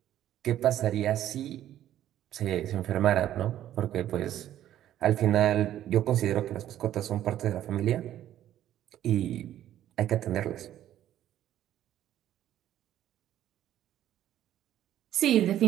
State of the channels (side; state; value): left; quieter; 12.1 dB